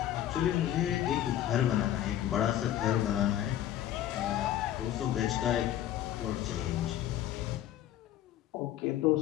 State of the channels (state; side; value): quieter; right; 12.0 dB